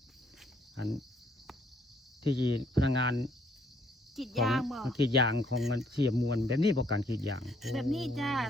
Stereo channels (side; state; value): both; normal; correlation 0.67